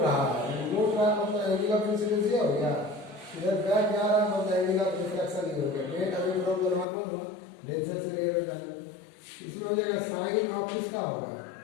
रहा है, मतलब एंगल ऑफ इंसिडेंस हो गया, इधर बैक जा रहा है, मतलब एंगल ऑफ रिफ्लेक्शन ही हो गया। बेंड अभी फ्रॉम नॉर्मल डेंसर से रे में जाना, इसमें हो जाएगा साइन ऑफ किसका होगा,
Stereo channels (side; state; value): right; drops out; at 6.9 s